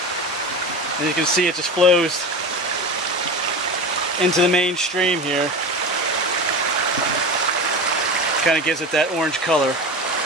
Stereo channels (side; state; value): both; normal; correlation 0.27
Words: And you can see it just flows into the main stream here. Kind of gives it that orange color.